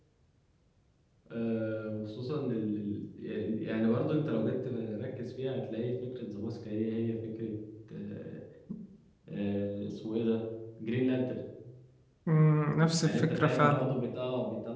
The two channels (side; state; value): both; identical; correlation 1.00